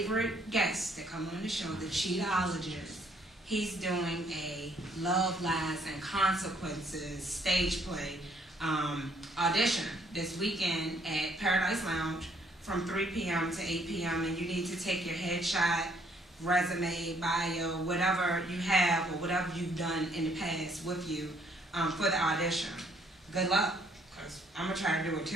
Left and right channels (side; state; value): both; normal; correlation 0.66